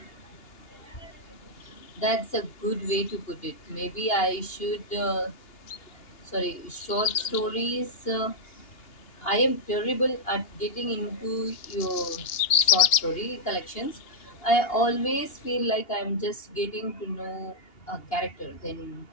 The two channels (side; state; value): right; late; 2.9 ms